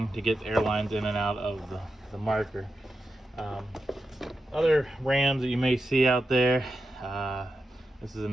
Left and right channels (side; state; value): both; normal; correlation 0.89